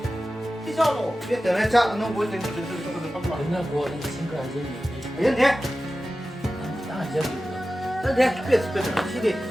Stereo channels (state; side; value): normal; both; correlation 0.95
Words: cái sao nó biết từ này chắc nó muốn đến từ không lo 그냥 뭐 친구 아저씨 biết thế 딱 저기 thế biết biết